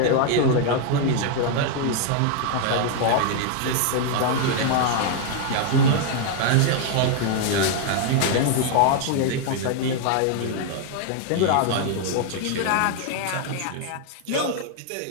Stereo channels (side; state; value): both; different; correlation 0.00